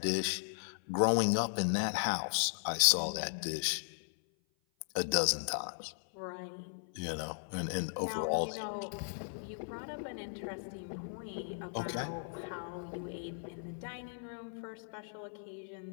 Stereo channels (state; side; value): silent; right; 53 dB below the other